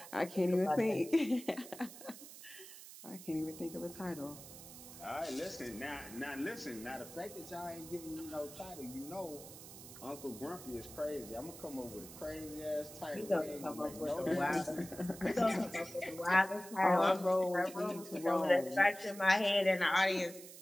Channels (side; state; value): right; noise; hiss, 15 dB below the sound